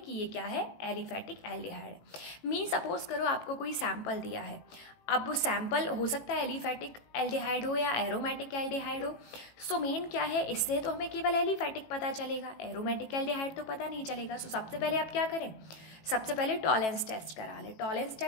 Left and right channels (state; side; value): late; right; 18 ms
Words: ये क्या है, एलिफैटिक एल्डिहाइड है। मीन सपोज करो आपको कोई सैंपल दिया है, अब वो सैंपल हो सकता है एलिफैटिक एल्डिहाइड हो या एरोमेटिक एल्डिहाइड हो। सो मेन क्या है, इससे तो हमें केवल एलिफैटिक पता चलेगा, एरोमेटिक एल्डिहाइड तो पता नहीं चलेगा। सो सबसे पहले आप क्या करें, सबसे पहले टॉलेंस टेस्ट करा ले। टॉलेंस